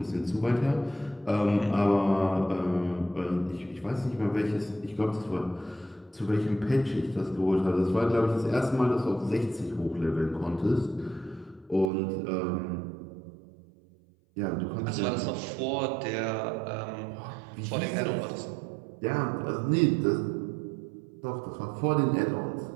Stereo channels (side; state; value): left; drops out; at 11.9 s